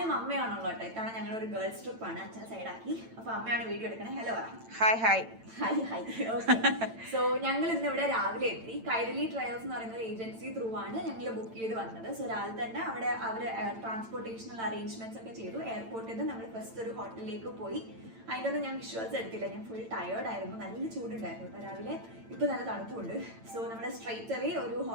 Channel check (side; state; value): left; late; 8.9 ms